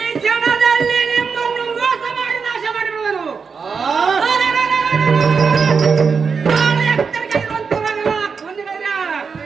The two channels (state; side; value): quieter; left; 5.5 dB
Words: ಕ್ಷಣದಲ್ಲಿ ನಿಮ್ಮನ್ನು ಮೋಸ ಮಾಡಿ ನಾಶ ಮಾಡಿರುವರು. ಬಹಳ ಎತ್ತರಕ್ಕೆ ಇರುವಂತವರಲ್ಲ ಕೊಂದಿರಯ್ಯ.